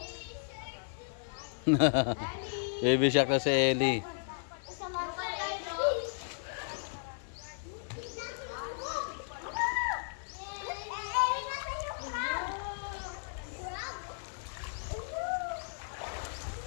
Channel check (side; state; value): right; silent; 55 dB below the other